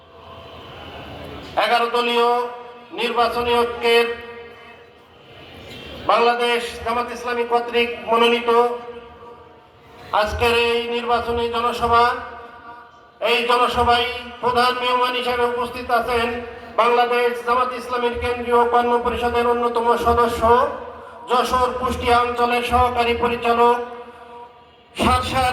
11 দলীয় নির্বাচনী ঐক্যের বাংলাদেশ জামাত ইসলামী কর্তৃক মনোনীত আজকের এই নির্বাচনী জনসভা, এই জনসভায় প্রধান মেহমান হিসেবে উপস্থিত আছেন বাংলাদেশ জামাত ইসলামীর কেন্দ্রীয় কর্ম পরিষদের অন্যতম সদস্য, যশোর কুষ্টিয়া অঞ্চলের সহকারী পরিচালক,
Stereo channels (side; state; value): both; identical; correlation 1.00